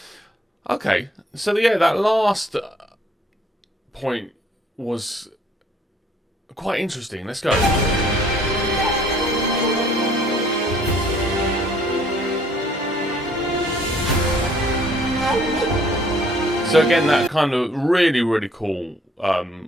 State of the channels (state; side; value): normal; both; correlation 0.61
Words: Okay, so yeah, that last point was quite interesting. Let's go. So again, that kind of really cool